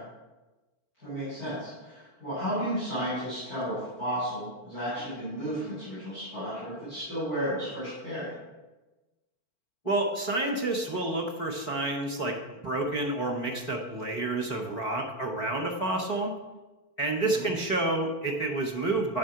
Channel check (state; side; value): late; right; 4.5 ms